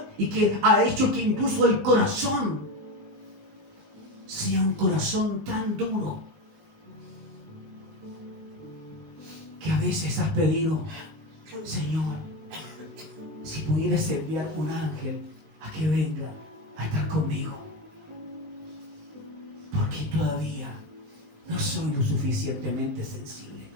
y que ha hecho que incluso el corazón sea un corazón tan duro que a veces has pedido: Señor, si pudieras enviar un ángel a que venga a estar conmigo, porque todavía no soy lo suficientemente sensible.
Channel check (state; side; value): late; left; 19 ms